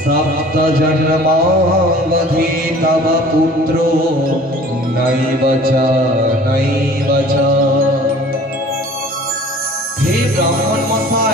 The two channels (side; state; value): both; normal; correlation 0.47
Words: সপ্ত জন্মাবধি তব পুত্রো নৈব চ নৈব চ। হে ব্রাহ্মণ